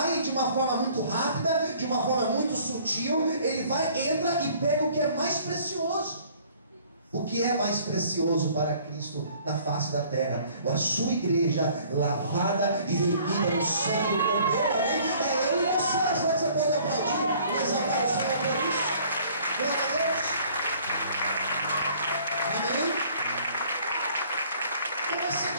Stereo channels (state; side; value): inverted; both; correlation -0.56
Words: de uma forma muito rápida, de uma forma muito sutil, ele vai, entra e pega o que é mais precioso. O que é mais precioso para Cristo na face da terra? A sua igreja lavada e remida no sangue do Cordeiro. Amém? É eu e você. Será que você pode aplaudir e exaltar o Senhor por isso? Glória a Deus. Amém? Então vai ser